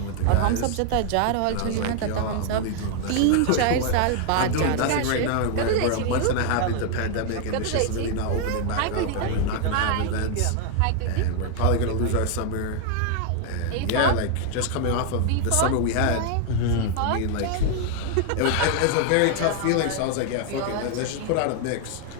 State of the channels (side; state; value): both; different; correlation 0.00